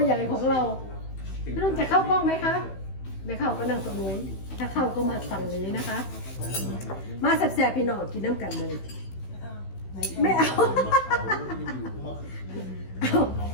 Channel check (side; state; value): right; late; 16 ms